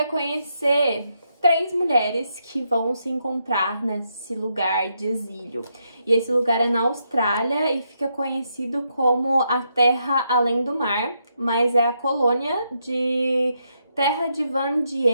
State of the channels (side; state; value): both; inverted; correlation -0.80